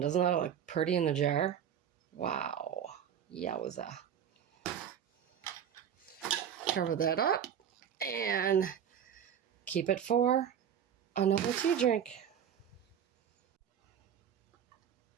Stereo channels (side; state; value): left; quieter; 8.8 dB